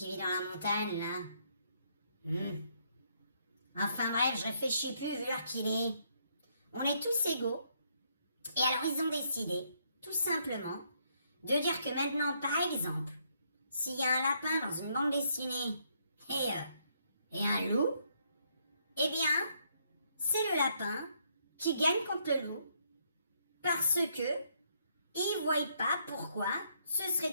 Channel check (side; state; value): both; inverted; correlation -0.72